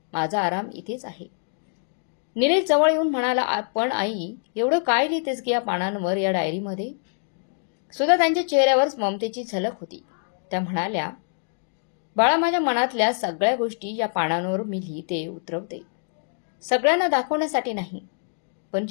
माझा आराम इथेच आहे. निलेश जवळ येऊन म्हणाला, पण आई, एवढं काय लिहितेस की या पानांवर, या डायरीमध्ये? सुधाताईंच्या चेहऱ्यावर ममतेची झलक होती. त्या म्हणाल्या, बाळा, माझ्या मनातल्या सगळ्या गोष्टी या पानांवर मी लिहिते, उतरवते. सगळ्यांना दाखवण्यासाठी नाही, पण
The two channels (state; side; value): silent; right; digital silence